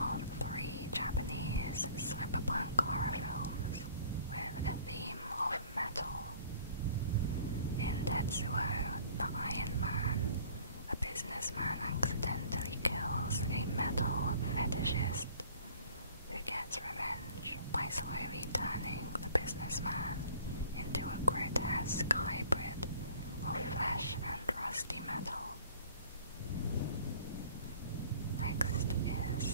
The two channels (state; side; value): inverted; both; correlation -0.52